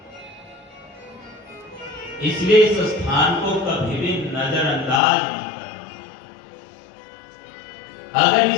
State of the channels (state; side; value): drops out; right; at 5.0 s